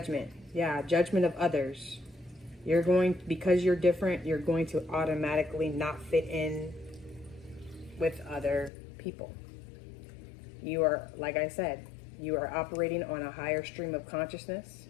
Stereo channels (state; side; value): drops out; right; at 8.7 s